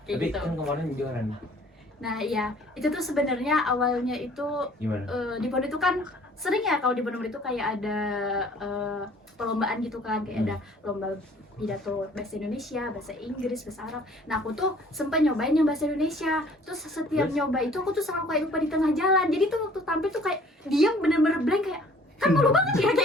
kayak Tapi gitu. kan kemarin juara nih. Nah iya, itu tuh sebenarnya awalnya itu Gimana? di pondok itu kan sering ya, kalau di pondok itu kayak ada perlombaan gitu kan, kayak ada lomba pidato bahasa Indonesia, bahasa Inggris, bahasa Arab. Nah aku tuh sempat nyobain yang bahasa Indonesia, terus setiap nyoba itu aku tuh selalu kayak lupa di tengah jalan. Jadi tuh waktu tampil tuh kayak diam, bener-bener blank, kayak kan malu banget ya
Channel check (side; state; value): both; normal; correlation 0.54